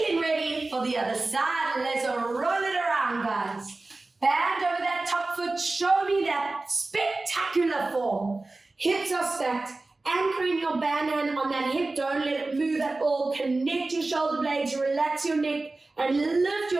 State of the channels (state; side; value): quieter; left; 3.2 dB